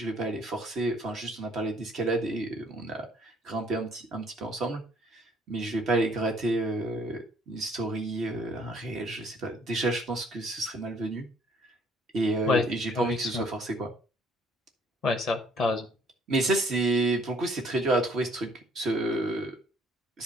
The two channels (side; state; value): both; normal; correlation 0.62